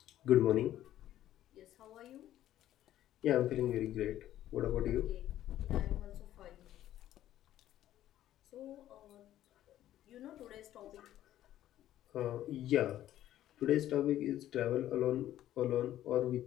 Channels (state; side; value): quieter; right; 12.8 dB